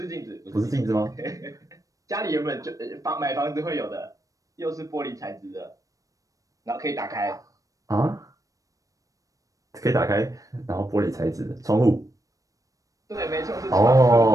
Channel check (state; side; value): late; left; 0.16 ms